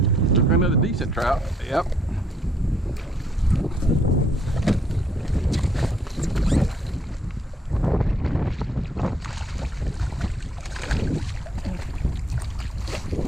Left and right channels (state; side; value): normal; both; correlation 0.69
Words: Another decent trout. Yep.